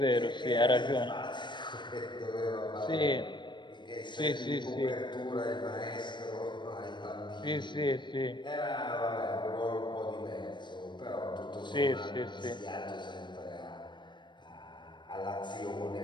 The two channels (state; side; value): late; right; 0.22 ms